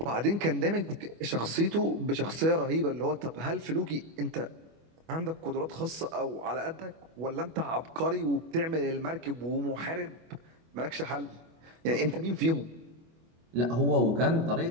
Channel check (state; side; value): late; left; 25 ms